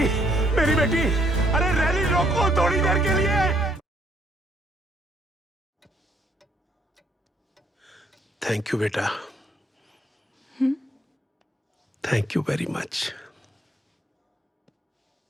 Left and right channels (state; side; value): normal; both; correlation 0.68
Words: मेरी बेटी, अरे रैली रोको थोड़ी देर के लिए। थैंक यू बेटा, thank you very much.